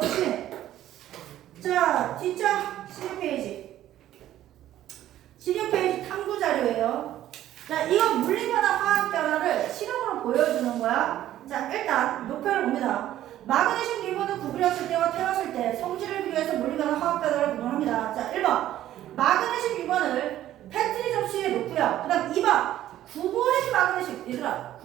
시. 자, 뒷장 16페이지. 16페이지 탐구 자료예요. 자, 이거 물리 변화, 화학 변화를 실험으로 보여주는 거야. 자, 일단 목표를 봅니다. 마그네슘 리본을 구부렸을 때와 태웠을 때 성질을 비교해서 물리 변화, 화학 변화를 구분합니다. 자, 1번 마그네슘 리본을 패트리 접시에 놓고요. 그 다음 2번 구부린 마그네슘. 얘들아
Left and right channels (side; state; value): left; quieter; 12.9 dB